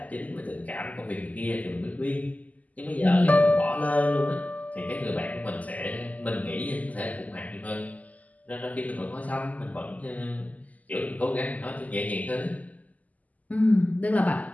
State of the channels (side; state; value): right; late; 0.076 ms